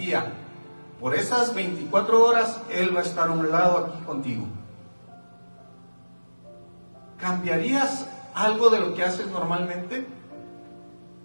por esas 24 horas, él va a estar a un lado aquí contigo. ¿Cambiarías algo de lo que haces normalmente?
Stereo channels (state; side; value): inverted; both; correlation -1.00